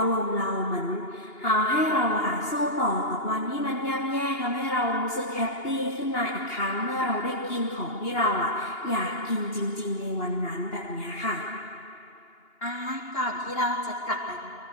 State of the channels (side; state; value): right; late; 2.8 ms